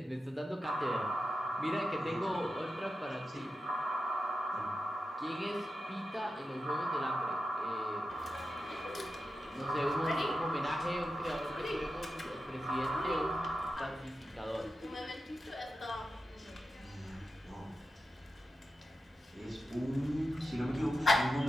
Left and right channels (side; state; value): both; normal; correlation 0.90